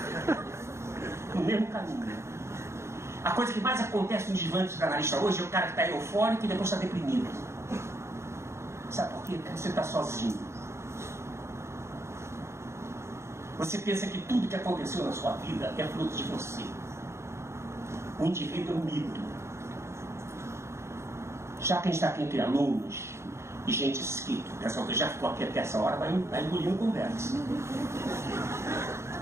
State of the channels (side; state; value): left; late; 0.13 ms